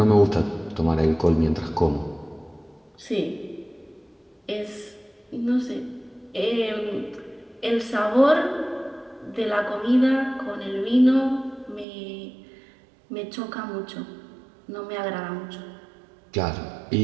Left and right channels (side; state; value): left; drops out; at 11.9 s